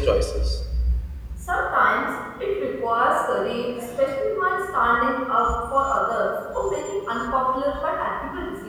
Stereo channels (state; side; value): identical; both; correlation 1.00